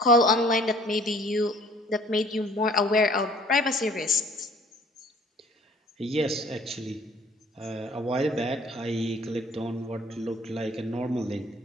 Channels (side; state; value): both; normal; correlation 0.54